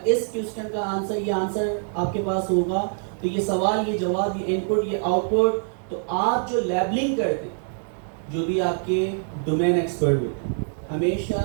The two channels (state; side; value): silent; left; 62 dB below the other